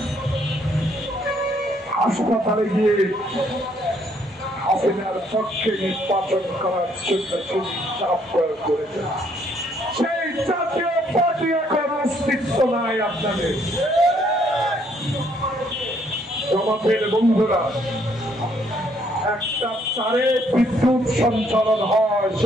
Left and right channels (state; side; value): normal; both; correlation 0.68